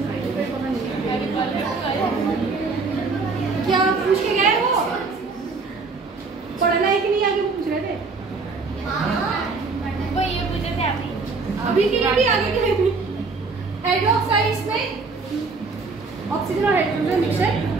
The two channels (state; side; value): quieter; left; 4.2 dB